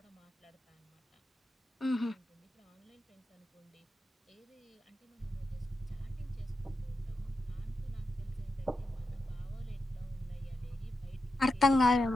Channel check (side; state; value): both; normal; correlation 0.88